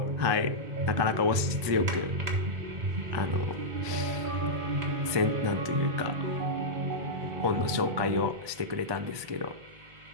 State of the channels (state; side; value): late; left; 1.2 ms